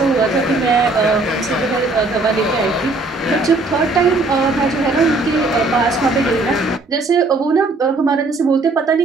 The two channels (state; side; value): quieter; left; 3.3 dB